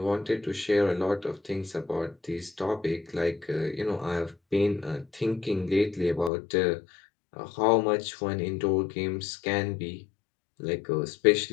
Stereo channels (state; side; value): drops out; right; at 6.3 s